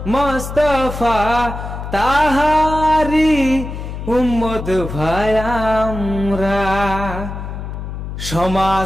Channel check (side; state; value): left; noise; hum, 8 dB below the sound